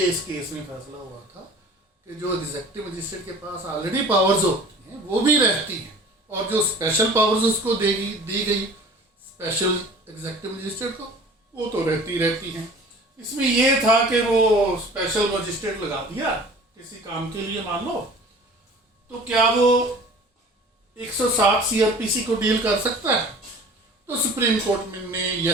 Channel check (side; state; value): both; normal; correlation 0.44